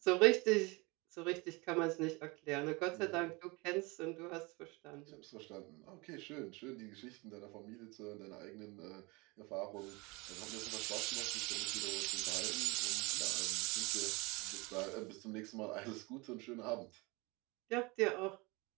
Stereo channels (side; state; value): left; quieter; 26.1 dB